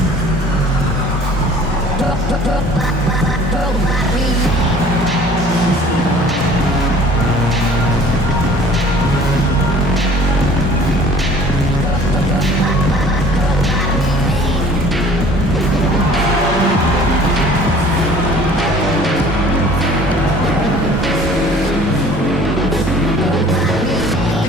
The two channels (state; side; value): normal; both; correlation 0.50